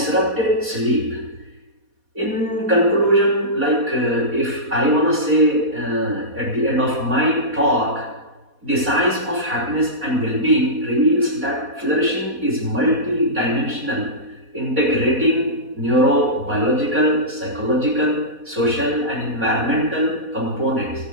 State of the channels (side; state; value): left; late; 4.1 ms